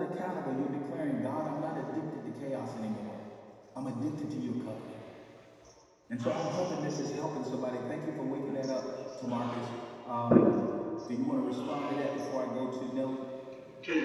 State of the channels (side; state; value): both; identical; correlation 1.00